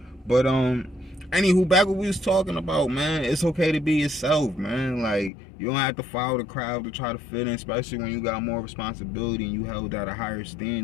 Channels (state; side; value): drops out; right; at 5.3 s